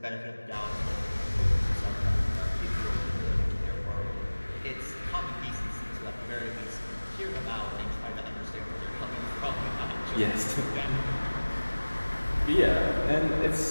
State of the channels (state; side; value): inverted; both; correlation -1.00